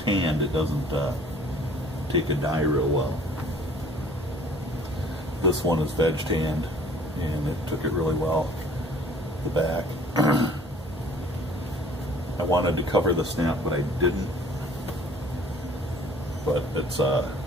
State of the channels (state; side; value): normal; both; correlation 0.53